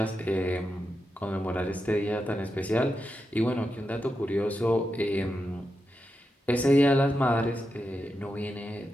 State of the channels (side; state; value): both; normal; correlation 0.88